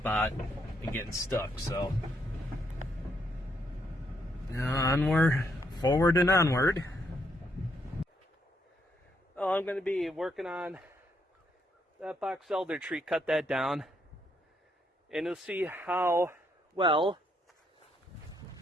and getting stuck. So onward, forward and onward. Oh, I'm going to be working on that box elder tree, cut that down, and you'll see how well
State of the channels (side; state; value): both; normal; correlation 0.74